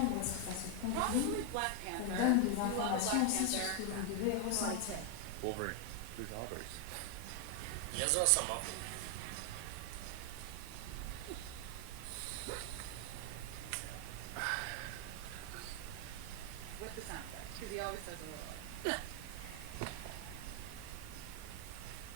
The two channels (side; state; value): both; different; correlation 0.01